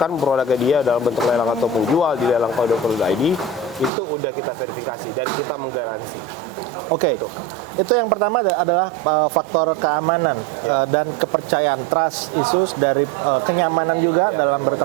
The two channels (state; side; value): drops out; left; at 3.9 s